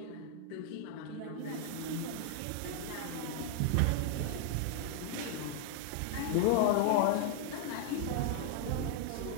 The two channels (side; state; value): both; different; correlation 0.00